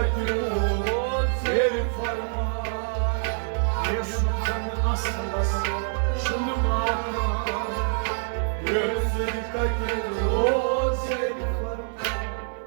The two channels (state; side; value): silent; left; digital silence